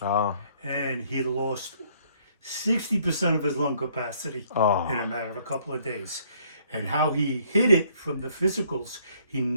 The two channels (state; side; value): inverted; both; correlation -0.63